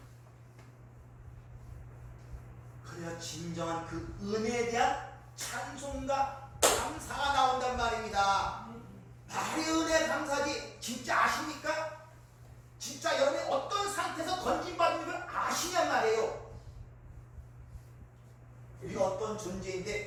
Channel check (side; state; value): both; identical; correlation 1.00